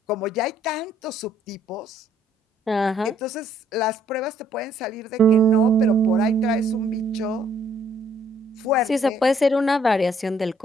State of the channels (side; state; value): both; normal; correlation 0.66